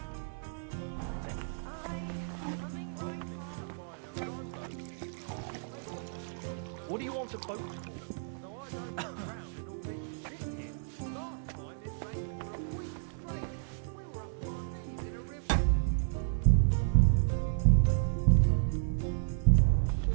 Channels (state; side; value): silent; left; digital silence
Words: What do you want a boat for?